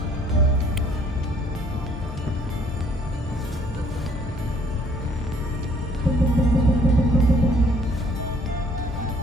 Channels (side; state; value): both; normal; correlation 0.61